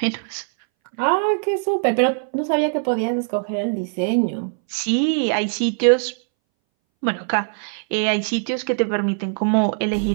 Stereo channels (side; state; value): left; silent; 62 dB below the other